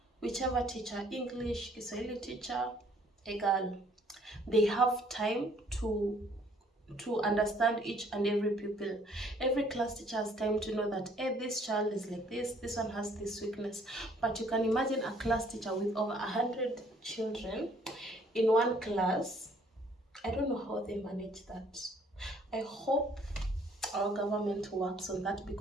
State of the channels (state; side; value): normal; both; correlation 0.61